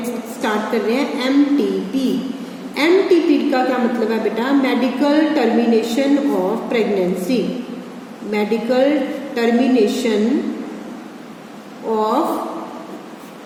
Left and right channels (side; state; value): both; identical; correlation 1.00